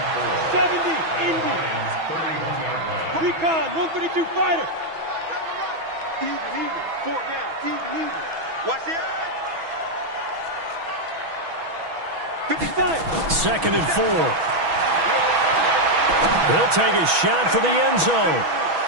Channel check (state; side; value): late; left; 6.1 ms